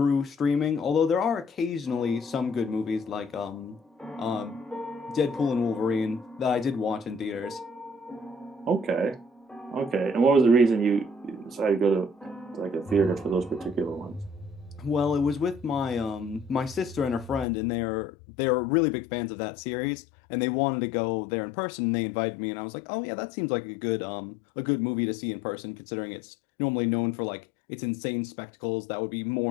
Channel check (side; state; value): right; drops out; at 17.4 s